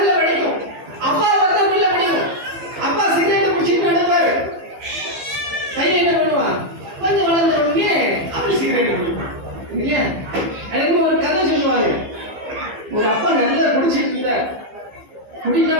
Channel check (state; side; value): late; left; 15 ms